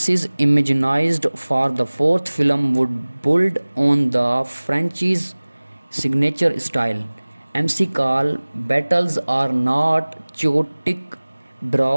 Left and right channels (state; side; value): inverted; both; correlation -1.00